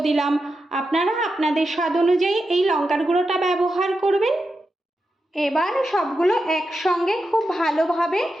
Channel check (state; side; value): normal; both; correlation 0.88